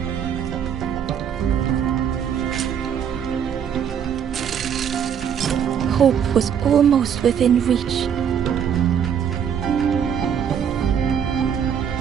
Hope was almost within reach.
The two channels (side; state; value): left; quieter; 8.2 dB